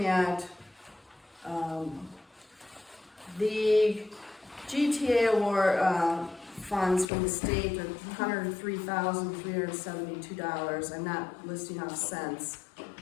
at. The GTA award funds from the state are $103,372. I'm not listing off cents.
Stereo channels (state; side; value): drops out; right; at 7.1 s